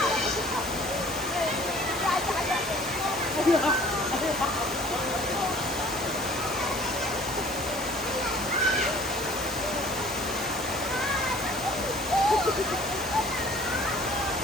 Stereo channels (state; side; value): normal; both; correlation 0.51